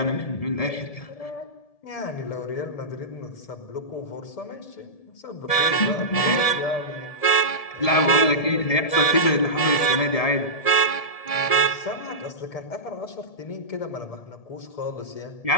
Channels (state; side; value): late; right; 1.7 ms